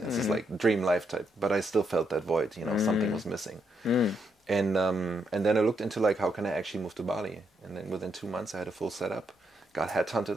This is like dream life type. But I still felt that void, something was missing. And then I looked into like, how can I actually move to Bali? And then within 2 months I had a full setup, got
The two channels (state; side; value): normal; both; correlation 0.78